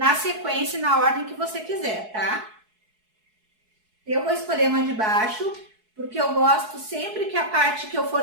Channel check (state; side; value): late; left; 4.6 ms